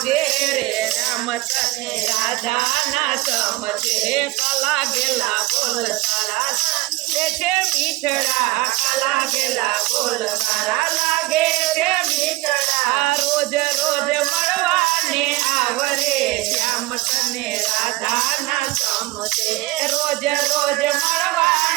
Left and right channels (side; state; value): left; quieter; 20.7 dB